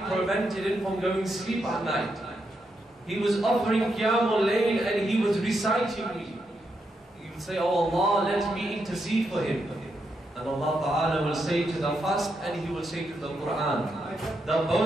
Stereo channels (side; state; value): both; normal; correlation 0.82